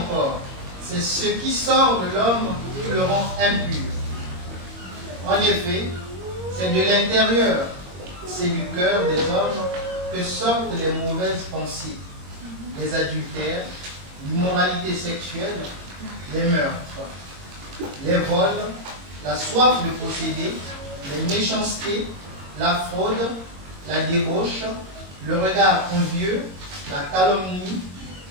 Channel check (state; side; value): late; left; 21 ms